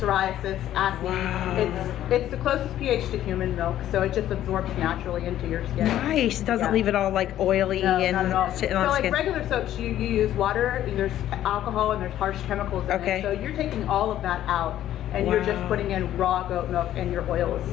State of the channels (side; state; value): right; quieter; 12.3 dB